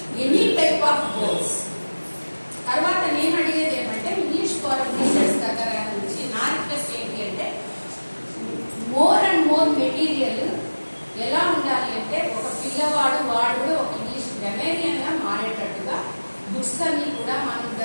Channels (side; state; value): both; inverted; correlation -1.00